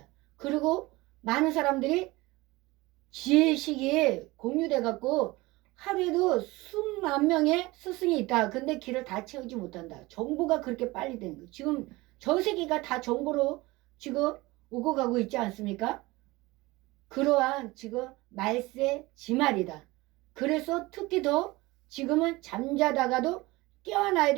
그리고 많은 사람들이 지혜식이 공유돼 갖고 하루에도 수만 명의 스승이 있다. 근데 길을 다 채우지 못한다. 정보가 그렇게 빨리 되는 거예요. 지금 전 세계가 다 정보로 지금 오고 가고 있지 않습니까? 그러한 지금 말세 지말이다. 그래서 특히 더 지금은 잠자다가도 깨어나야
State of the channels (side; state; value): left; quieter; 21.2 dB